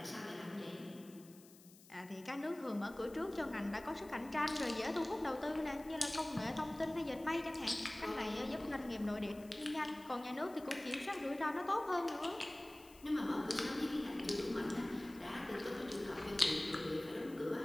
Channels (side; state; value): left; noise; hiss, 22 dB below the sound